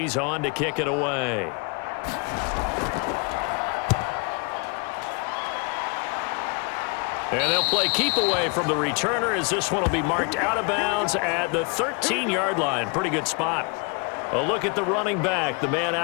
on to kick it away. And they'll play keep away from the returner as this one will be marked out of bounds at the 13-yard line. Pretty good spot. A look at the running back, the man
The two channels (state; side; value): quieter; right; 32.5 dB